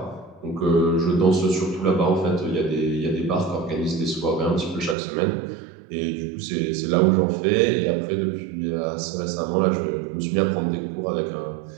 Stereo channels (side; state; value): left; drops out; at 5.0 s